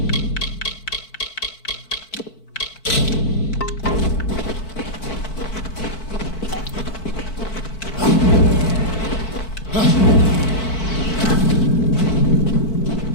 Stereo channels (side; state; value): right; late; 4.5 ms